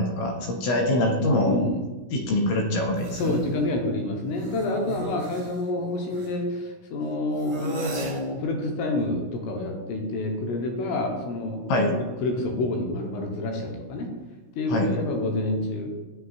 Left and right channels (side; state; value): right; late; 16 ms